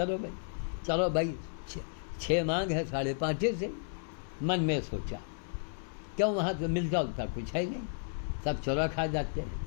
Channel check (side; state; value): right; silent; 56 dB below the other